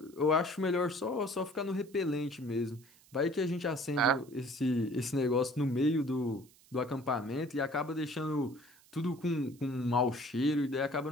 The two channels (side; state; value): right; noise; hiss, 27 dB below the sound